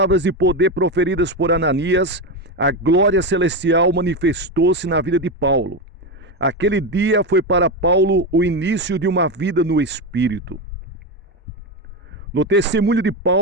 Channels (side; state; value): both; normal; correlation 0.14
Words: de poder proferidas por Ananias, a glória celestial manifestou-se na vida de Paulo. Aquele dia foi para Paulo o início de uma vida no Espírito. No testemunho de